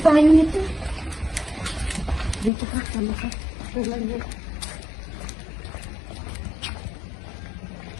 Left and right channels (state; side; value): drops out; right; at 2.5 s